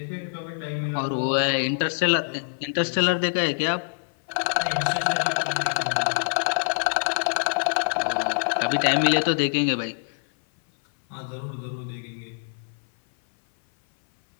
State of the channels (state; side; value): silent; right; 57 dB below the other